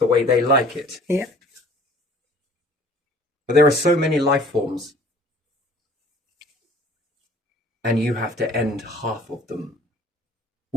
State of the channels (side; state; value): both; normal; correlation 0.52